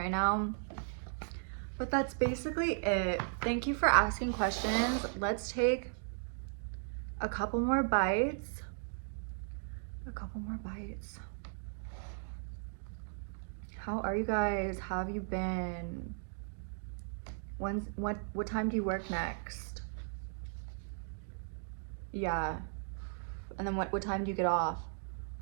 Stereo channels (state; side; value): silent; left; digital silence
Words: now. But that's basically it. Thank you for asking questions. Let's take a couple more bites. How are you guys? How have you been? What time do you work next? Yeah. And then what time do you get off?